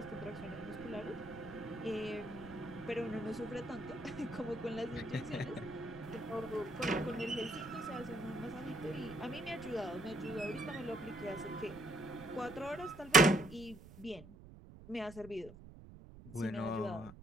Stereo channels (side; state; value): right; noise; rumble, 17 dB below the sound